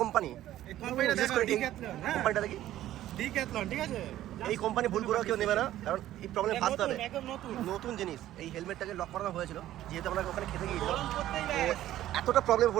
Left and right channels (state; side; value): quieter; left; 13.5 dB